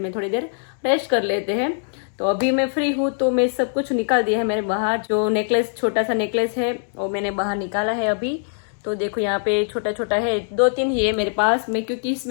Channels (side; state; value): right; silent; digital silence